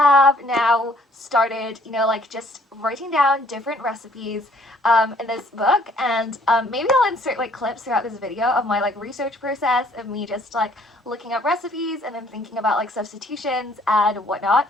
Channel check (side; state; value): both; normal; correlation 0.61